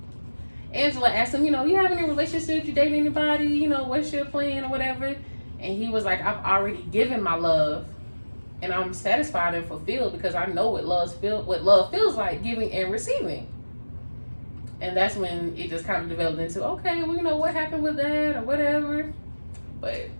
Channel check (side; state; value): both; inverted; correlation -1.00